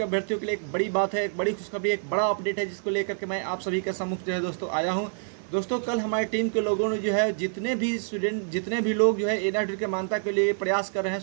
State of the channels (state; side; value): silent; left; 56 dB below the other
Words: अभ्यर्थियों के लिए एक बड़ी बात है, एक बड़ी खुशखबरी, एक बड़ा अपडेट है जिसको लेकर के मैं आप सभी के सम्मुख जो है दोस्तों आया हूं। दोस्तों, कल हमारी टीम के लोगों ने जो है जितने भी लोग जो है एनआर अपडेट के मान्यता के लिए प्रयास कर रहे हैं,